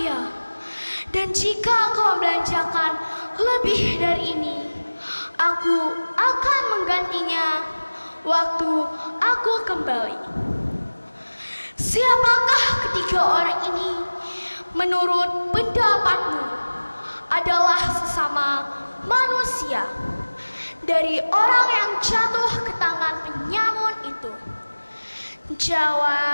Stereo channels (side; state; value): both; inverted; correlation -1.00